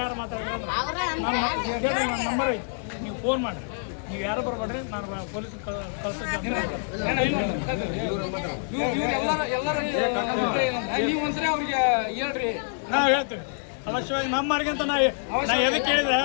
ಯಾರು ಮಾತಾಡಿದ್ರೆ ನಂಬರ್ ಐತಿ, ನೀವು ಫೋನ್ ಮಾಡ್ರಿ. ನೀವು ಯಾರು ಬರ್ಬೇಡ್ರಿ, ನಾನು ಪೊಲೀಸ್ ನೀವು ಒಂದ್ಸರಿ ಅವ್ರಿಗೆ ಹೇಳ್ರಿ. ನಾವು ಹೇಳ್ತೀವಿ ಅವಶ್ಯವಾಗಿ ನಮ್ಮರ್ಗೆ ಅಂತ ನಾ ಎದಕ್ಕೆ ಹೇಳಿದೆ,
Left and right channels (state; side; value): silent; right; digital silence